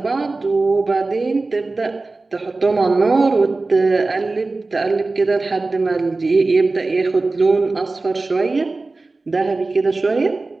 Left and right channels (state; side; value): quieter; left; 3.4 dB